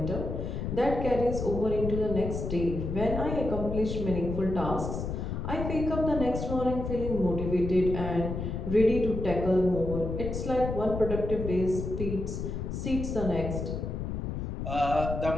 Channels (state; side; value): noise; left; rumble, 4 dB below the sound